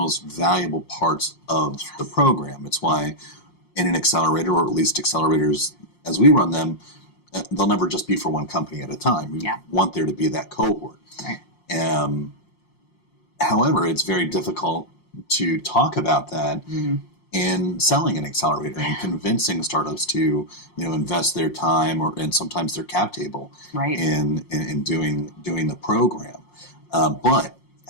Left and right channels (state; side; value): late; right; 5.6 ms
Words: valuable parts of the program. It's why in an accelerator, or at least accelerators as we run them, they'll never just be for one company at a time. We want there to be that cohort. Right. However, it's very difficult to talk about that in selling an accelerator and convincing startups to, invest their time and sometimes their cap table in doing the program. But